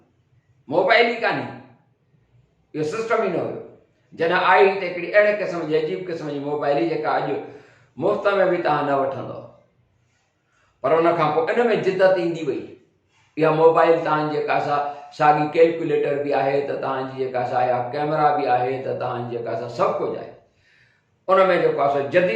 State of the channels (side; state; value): both; identical; correlation 1.00